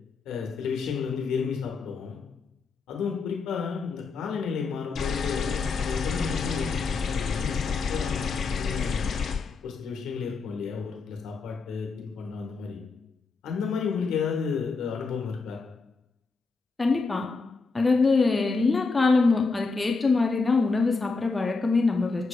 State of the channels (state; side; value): quieter; right; 4.3 dB